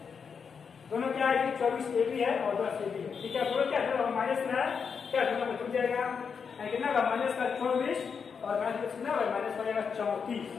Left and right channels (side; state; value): right; quieter; 6.2 dB